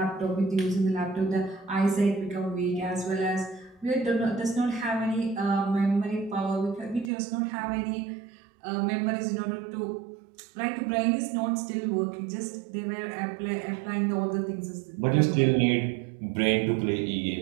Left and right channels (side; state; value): left; drops out; at 7.1 s